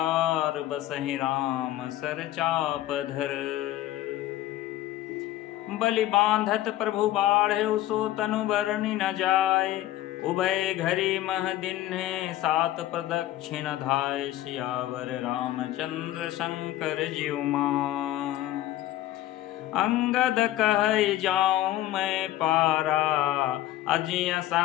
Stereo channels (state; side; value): quieter; right; 14.4 dB